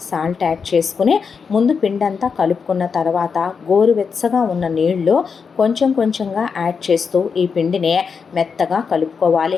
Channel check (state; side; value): quieter; right; 5.8 dB